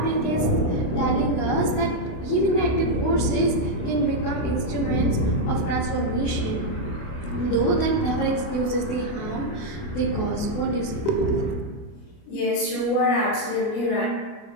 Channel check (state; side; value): late; right; 29 ms